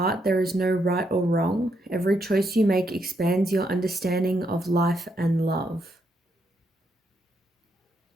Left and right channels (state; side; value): normal; both; correlation 0.78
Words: there is no right or wrong. Every choice you make expands your understanding of life and love.